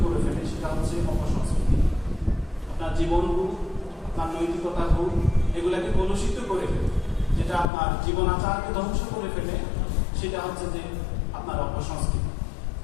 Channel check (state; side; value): drops out; right; at 7.7 s